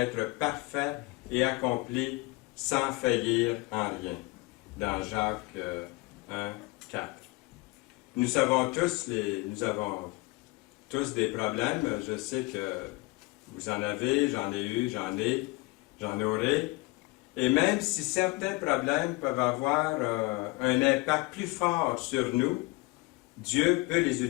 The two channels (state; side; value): quieter; right; 23.7 dB